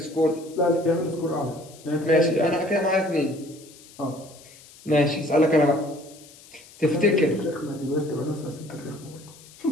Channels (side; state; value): left; noise; hiss, 22 dB below the sound